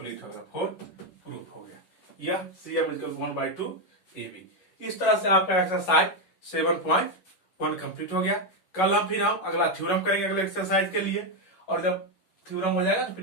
हो गया, फोर्थ प्रूफ हो गया, यह CM इक्वल 1/2 AB। इस तरह से आपका एक्सरसाइज 7.1 कंप्लीट हो गया। कल हम फिर अगला थ्योरम करेंगे अगले एक्सरसाइज के लिए, और जब थ्योरम हो जाएगा तो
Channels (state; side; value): late; right; 11 ms